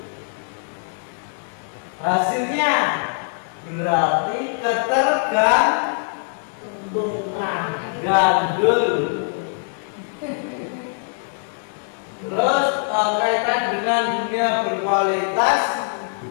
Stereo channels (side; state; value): right; silent; 59 dB below the other